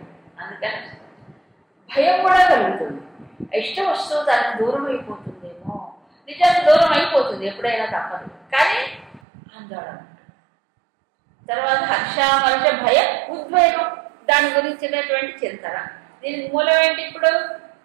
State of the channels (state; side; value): drops out; left; at 9.2 s